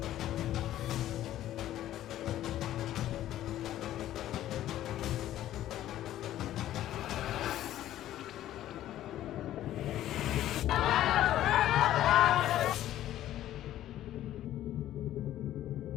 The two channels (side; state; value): right; quieter; 13.0 dB